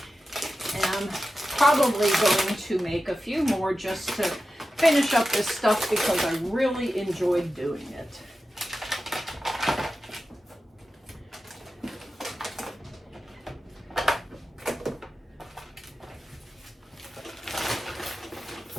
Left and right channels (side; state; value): both; normal; correlation 0.93